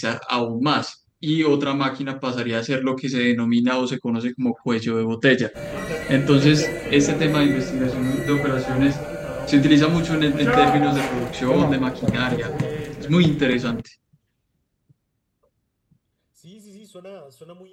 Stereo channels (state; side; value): identical; both; correlation 1.00